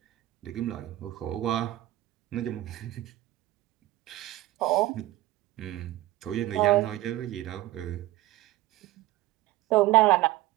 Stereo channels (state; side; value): quieter; left; 16.6 dB